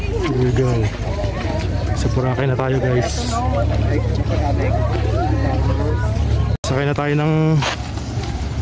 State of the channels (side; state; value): both; identical; correlation 1.00